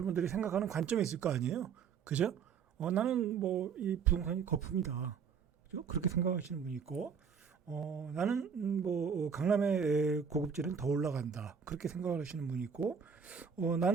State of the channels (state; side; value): quieter; left; 6.5 dB